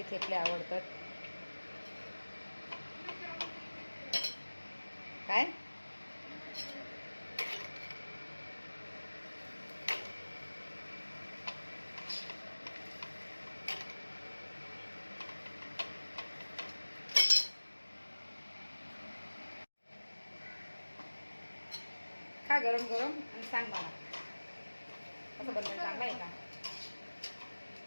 थेपले आवडतात? काय खा गरम गरम आणि सांग मला कसं बनवायचं. चांगलं आहे का?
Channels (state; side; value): inverted; both; correlation -1.00